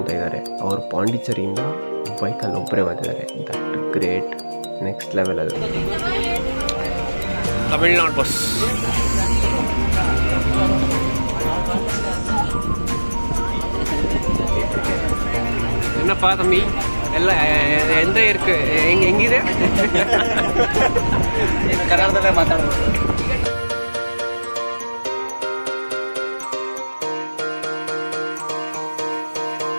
ಇದ್ದಾರೆ, ಅವರು ಪಾಂಡಿಚೇರಿಯಿಂದ ಬೈಕಲ್ಲಿ ಒಬ್ಬರೇ ಬಂದಿದ್ದಾರೆ. That great, next level. ಅದು ತಮಿಳ್ನಾಡು ಬಸ್. என்னப்பா தம்பி எல்லாம் எந்த இருக்கு ಹೆಂಗಿದೆ? ಕನ್ನಡದಲ್ಲೇ ಮಾತಾಡೋದು.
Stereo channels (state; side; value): inverted; both; correlation -1.00